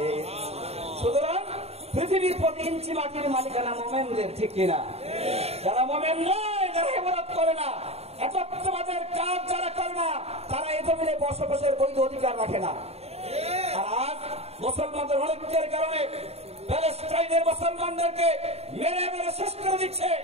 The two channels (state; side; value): late; left; 0.30 ms